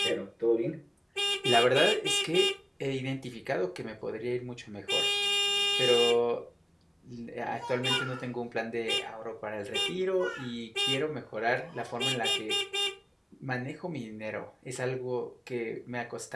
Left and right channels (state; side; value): identical; both; correlation 1.00